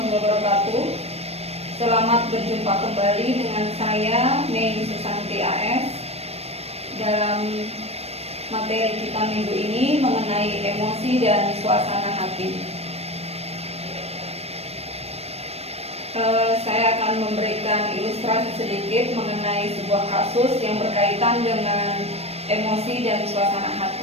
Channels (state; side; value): late; left; 0.30 ms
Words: wabarakatuh. Selamat berjumpa kembali dengan saya Mei Susanti AS dalam materi kita minggu ini mengenai emosi dan suasana hati. Saya akan memberikan ilustrasi sedikit mengenai sebuah kasus yang berkaitan dengan emosi dan suasana